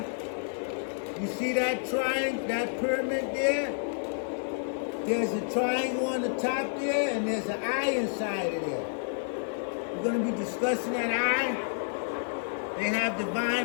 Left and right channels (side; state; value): right; silent; digital silence